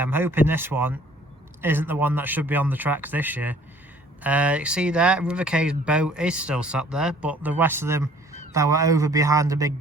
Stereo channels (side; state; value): both; normal; correlation 0.56